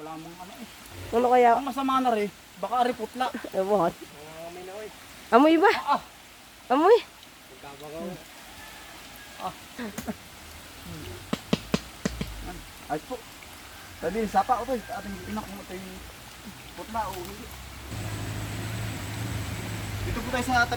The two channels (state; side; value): identical; both; correlation 1.00